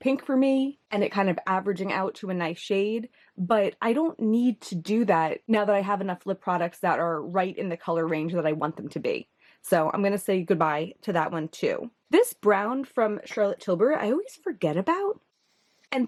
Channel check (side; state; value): both; identical; correlation 1.00